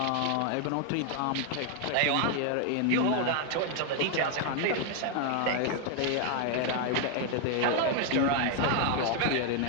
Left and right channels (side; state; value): both; different; correlation 0.00